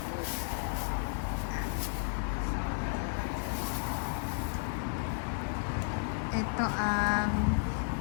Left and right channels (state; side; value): silent; right; digital silence